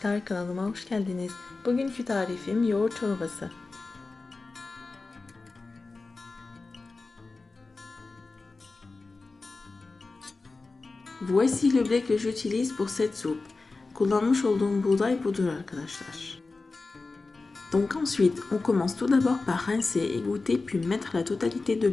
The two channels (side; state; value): right; quieter; 3.7 dB